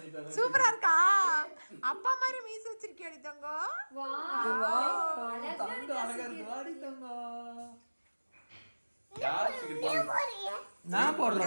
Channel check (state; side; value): inverted; both; correlation -1.00